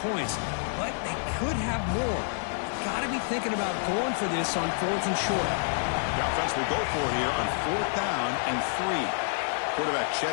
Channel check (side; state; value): right; silent; digital silence